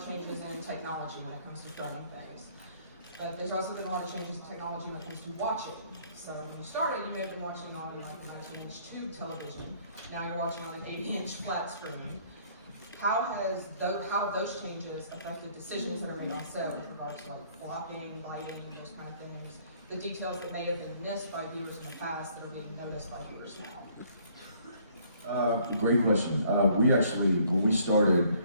changes in technology when it comes to filming things. But there's also been a lot of changes in technology when it comes to watching. So when you started, you may have been watching on like a 19-inch tube television. Now you're watching on an 80-inch flat screen. How have those changes affected decisions that are made on set with regards to like blocking, lighting, those kind of things? The details that may have been missed by viewers in the past that are being noticed by viewers now? Great question. We actually, when we started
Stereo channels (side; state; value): both; inverted; correlation -0.61